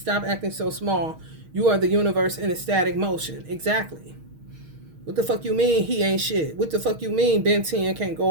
acting so small. You are the universe in a static motion. Exactly. What the fuck you mean he ain't shit? What the fuck you mean Ben 10 can't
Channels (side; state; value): left; late; 6.4 ms